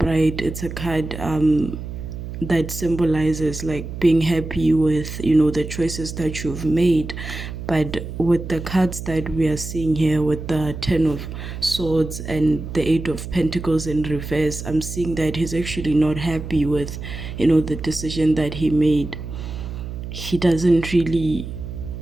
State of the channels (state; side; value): noise; right; hum, 8 dB below the sound